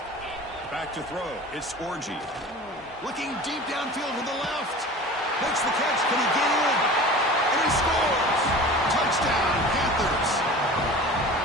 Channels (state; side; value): normal; both; correlation 0.38